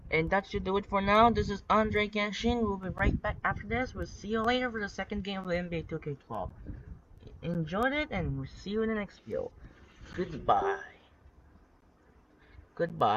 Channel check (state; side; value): identical; both; correlation 1.00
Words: And that should do it for now. This is Andre Genshin. We'll be right back after this. We'll see you later for the second game of the NBA 2K12. Enjoyed it, and we'll see you in the next video. Goodbye.